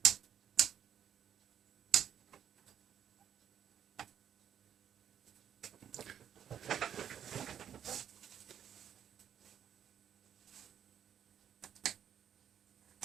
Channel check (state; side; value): quieter; left; 9.2 dB